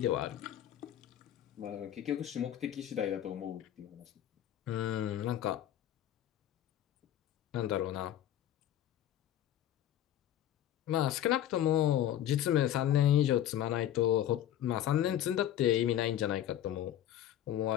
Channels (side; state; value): right; quieter; 11.5 dB